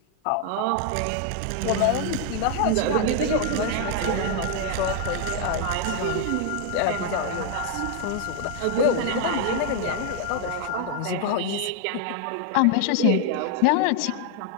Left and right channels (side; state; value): both; different; correlation 0.00